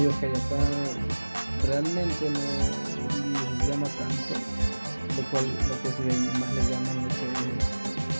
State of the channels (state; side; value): inverted; both; correlation -1.00